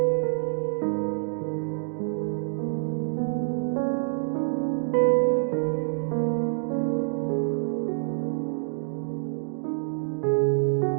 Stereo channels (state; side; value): silent; left; digital silence